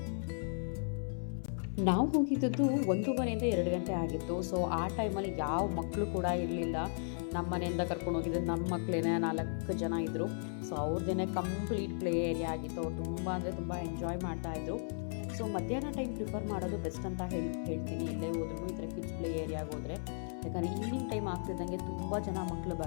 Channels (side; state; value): right; silent; 54 dB below the other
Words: ನಾವು ಹೋಗಿದ್ದದ್ದು 1:30 2 ಗಂಟೆ ಆಗಿತ್ತು. ಸೊ ಆ ಟೈಮಲ್ಲಿ ಯಾವ ಮಕ್ಕಳು ಕೂಡ ಇರಲಿಲ್ಲ. ನಮ್ಮ ಮನೆಯಿಂದ ಕರ್ಕೊಂಡು ಹೋಗಿದ್ದು ನಮ್ಮ ಮಕ್ಕಳೇನೆ 4 ಜನ ಇದ್ದರು. ಸೊ ಅವ್ರದ್ದೇ ಕಂಪ್ಲೀಟ್ ಪ್ಲೇ ಏರಿಯಾ ಆಗಿತ್ತು. ಅವ್ರು ತುಂಬ ಅಂದರೆ ತುಂಬ ಎಂಜಾಯ್ ಮಾಡ್ತಾಯಿದ್ರು. ಸೊ ಮಧ್ಯಾಹ್ನ ಟೈಮ್ ಪ್ರಿಫರ್ ಮಾಡೋದು ಬೆಸ್ಟ್ ಅಂತ ಹೇಳ್ತೀನಿ. ಎಲ್ಲೇ ಹೋದ್ರೂ ಈ ಥರ ಕಿಡ್ಸ್ ಪ್ಲೇ ಏರಿಯಾಗೆ ಹೋದರೆ, ಯಾಕಂದರೆ ಈವ್ನಿಂಗ್ ಟೈಮ್ ಆಗ್ತಿದ್ದಂಗೆ ತುಂಬ ಜನ ಮಕ್ಕಳು